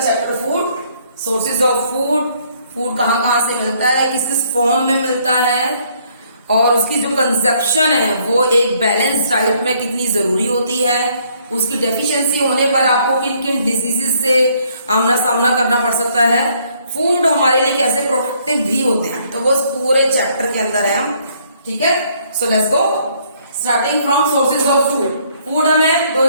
food, sources of food. Food कहाँ कहाँ से मिलता है, किस किस फॉर्म में मिलता है और उसकी जो कंजप्शन है वो एक बैलेंस डाइट में कितनी जरूरी होती है। उसकी डेफिशिएंसी होने पर आपको किन किन डिजीजेस से आमना सामना करना पड़ सकता है। फूड हमारे लिए कैसे प्रोटेक्टिव भी होते हैं, तो वो पूरे चैप्टर के अंदर है हम। ठीक है, so let's go starting from sources of food. Food हमें दो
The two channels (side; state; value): both; inverted; correlation -0.66